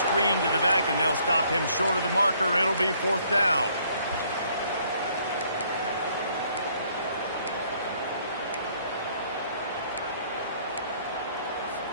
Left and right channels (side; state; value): both; inverted; correlation -0.64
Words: to the back, and they'll stop him short of the marker. It'll be 4th down.